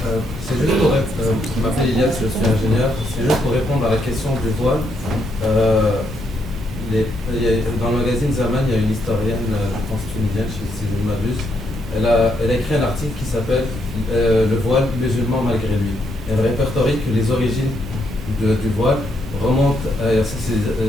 C'est juste pour je m'appelle Ilias, je suis ingénieur. C'est juste pour répondre à la question du voile. Dans le magazine Zaman, il y a une historienne, je pense tunisienne, si je ne m'abuse. Elle a écrit un article qui s'appelle Le voile musulman malgré lui. Elle répertorie que les origines du voile remontent à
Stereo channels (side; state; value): both; normal; correlation 0.76